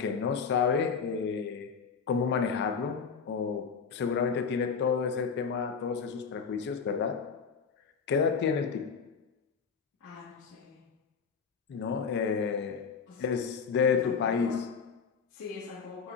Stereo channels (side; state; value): right; quieter; 5.8 dB